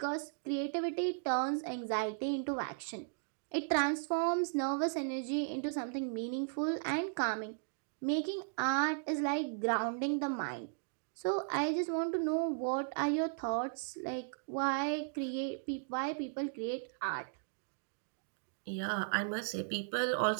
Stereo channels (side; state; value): left; silent; digital silence